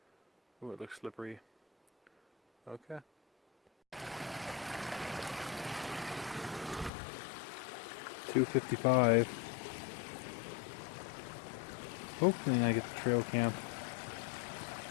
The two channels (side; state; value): right; drops out; at 6.9 s